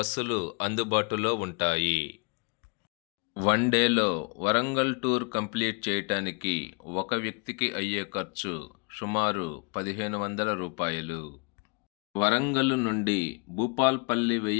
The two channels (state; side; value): quieter; right; 33.3 dB